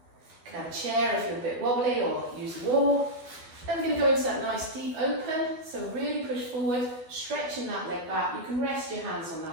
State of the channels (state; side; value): late; left; 12 ms